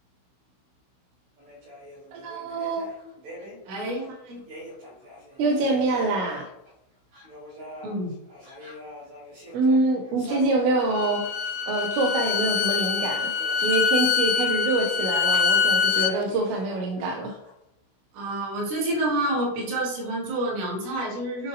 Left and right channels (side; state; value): left; late; 16 ms